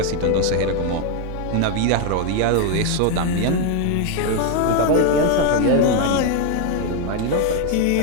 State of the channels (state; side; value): different; both; correlation 0.01